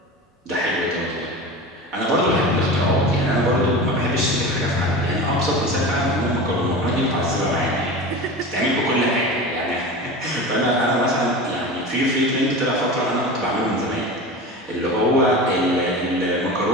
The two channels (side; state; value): both; normal; correlation 0.31